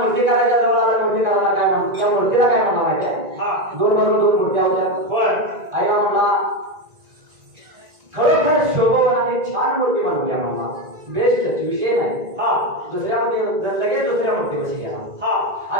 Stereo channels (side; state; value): left; late; 1.9 ms